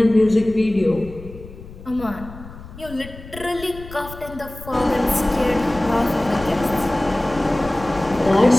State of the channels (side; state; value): left; noise; rumble, 15 dB below the sound